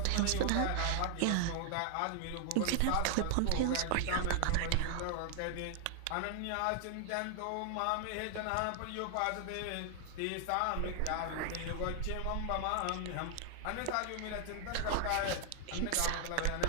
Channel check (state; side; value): different; both; correlation 0.00